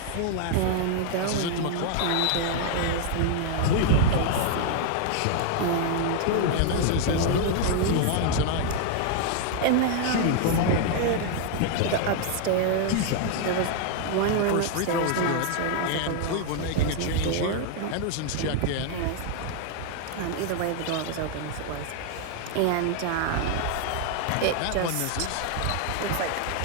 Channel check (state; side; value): different; both; correlation 0.00